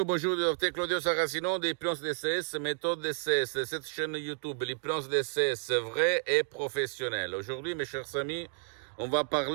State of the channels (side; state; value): left; silent; 57 dB below the other